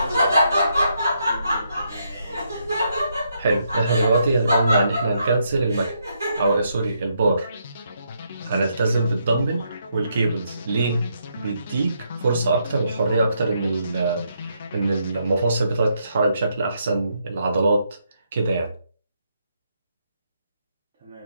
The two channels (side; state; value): both; inverted; correlation -0.77